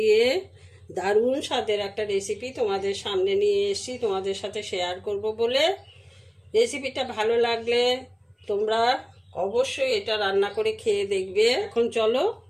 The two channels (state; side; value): identical; both; correlation 1.00